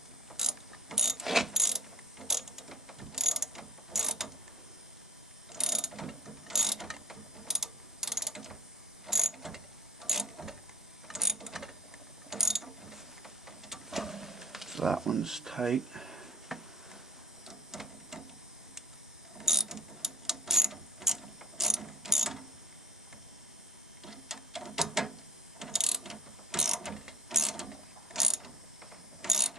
So that one's tight.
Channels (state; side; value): normal; both; correlation 0.39